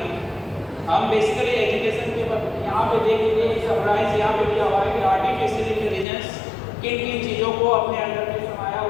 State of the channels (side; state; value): right; drops out; at 6.1 s